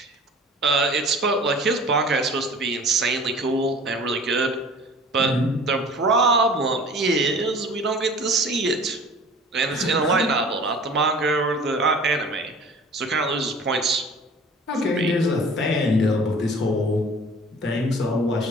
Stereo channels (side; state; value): both; normal; correlation 0.45